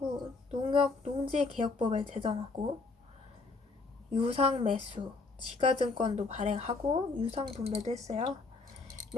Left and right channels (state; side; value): quieter; right; 3.9 dB